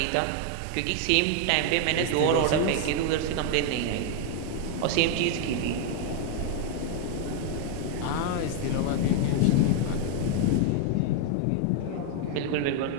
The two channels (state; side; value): different; both; correlation 0.00